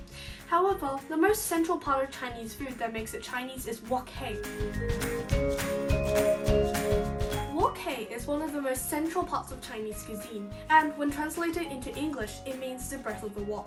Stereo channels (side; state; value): both; identical; correlation 1.00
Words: However, the most central part of Chinese food that makes it Chinese is wok hei. Wok hei is one of the most central parts of Chinese cuisine, and when translated into English, it means the breath of the